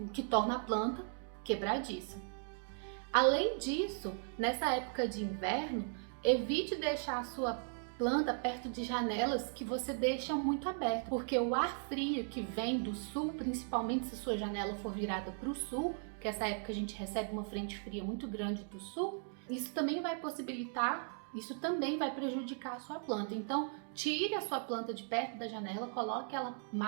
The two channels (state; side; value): silent; left; 53 dB below the other